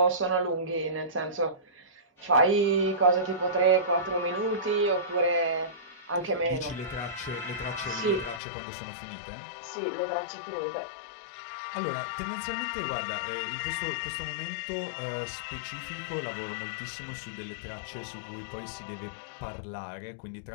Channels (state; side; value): drops out; right; at 8.4 s